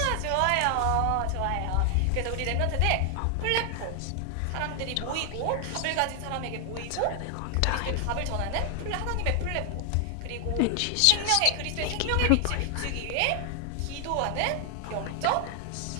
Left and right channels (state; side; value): different; both; correlation 0.00